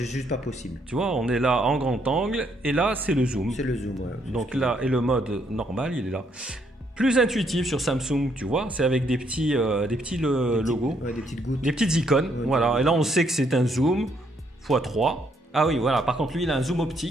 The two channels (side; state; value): both; normal; correlation 0.72